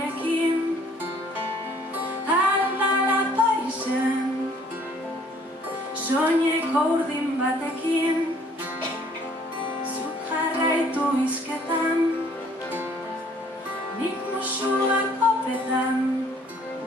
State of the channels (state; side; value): normal; both; correlation 0.59